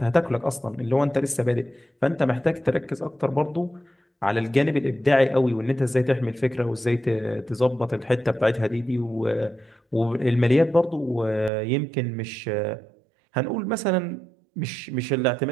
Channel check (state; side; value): drops out; left; at 11.5 s